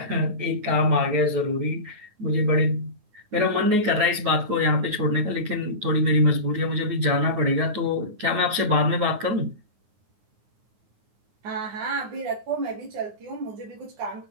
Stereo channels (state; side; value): late; left; 9.5 ms